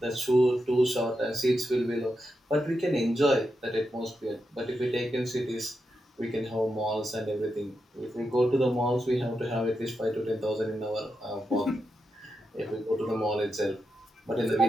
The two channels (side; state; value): both; normal; correlation 0.86